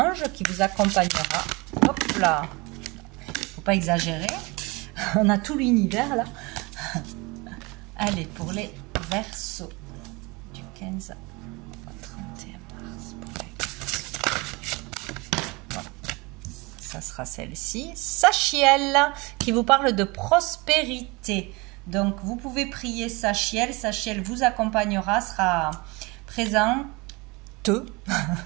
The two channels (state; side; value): quieter; left; 25.8 dB